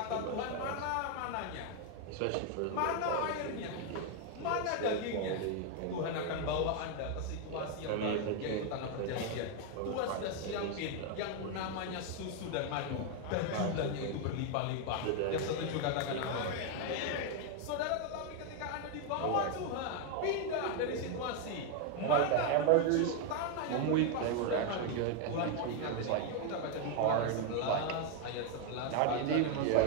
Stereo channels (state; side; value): different; both; correlation 0.01